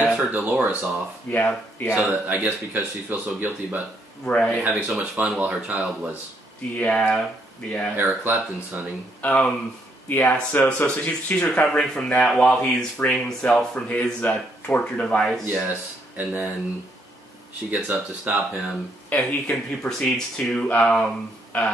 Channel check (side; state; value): both; normal; correlation 0.72